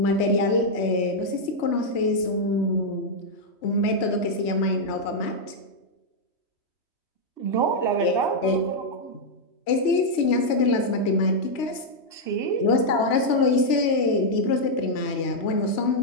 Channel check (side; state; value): right; late; 3.1 ms